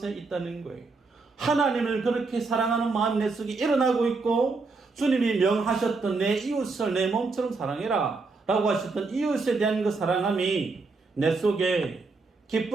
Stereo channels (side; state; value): left; quieter; 4.0 dB